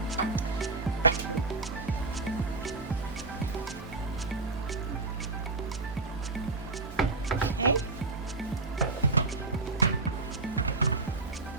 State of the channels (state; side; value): quieter; left; 3.5 dB